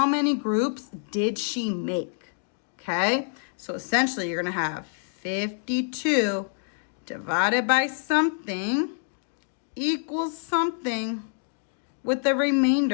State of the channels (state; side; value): silent; right; digital silence